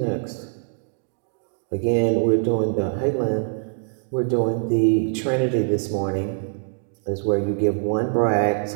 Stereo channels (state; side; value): silent; left; 63 dB below the other